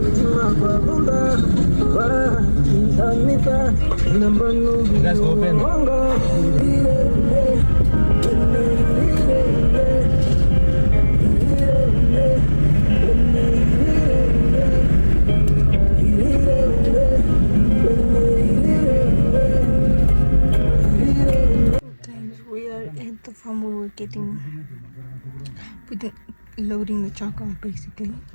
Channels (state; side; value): inverted; both; correlation -1.00